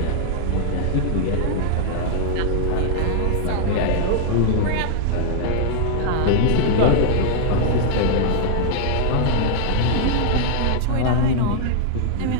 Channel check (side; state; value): both; different; correlation -0.01